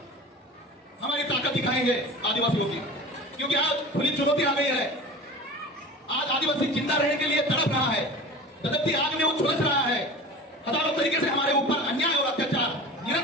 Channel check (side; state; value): both; normal; correlation 0.36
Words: हमारी ताकत दिखाएंगे आदिवासियों की। क्योंकि आज खुली चुनौती आ गई है। आज आदिवासी जिंदा रहने के लिए तड़प रहा है, तड़पती आग में वो झुलस रहा है। हजारों तरीके से हमारे ऊपर अन्याय और अत्याचार